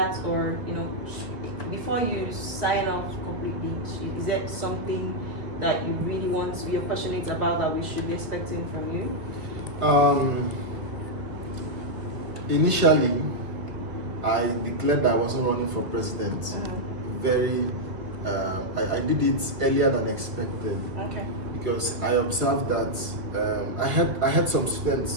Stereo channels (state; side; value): late; left; 1.9 ms